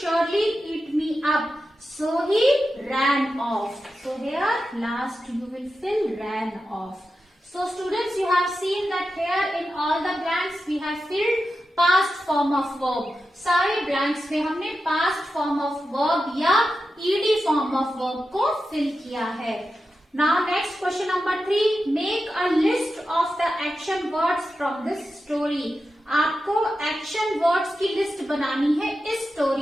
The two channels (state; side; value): normal; both; correlation 0.91